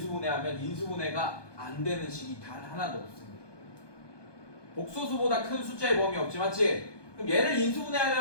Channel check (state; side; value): late; right; 1.2 ms